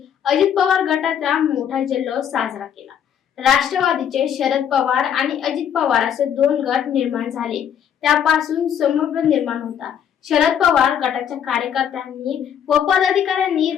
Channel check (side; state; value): right; quieter; 8.9 dB